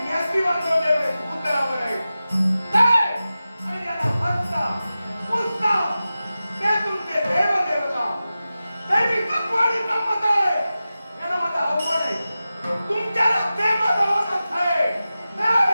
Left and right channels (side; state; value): both; inverted; correlation -0.94